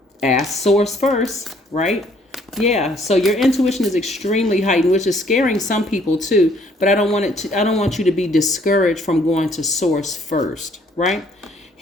ask source first, right? Yeah. So your intuition is extremely heightened, which is scaring some people too. But I don't want you to be discouraged from going to source first, right?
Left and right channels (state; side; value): normal; both; correlation 0.63